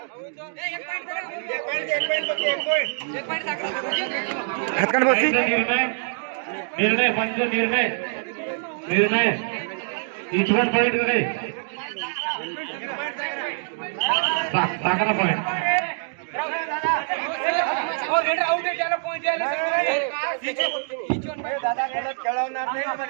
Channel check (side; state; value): left; silent; digital silence